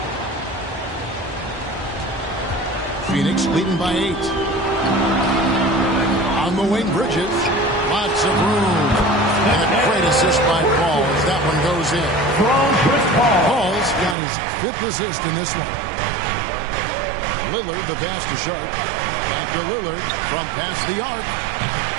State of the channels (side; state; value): left; drops out; at 14.2 s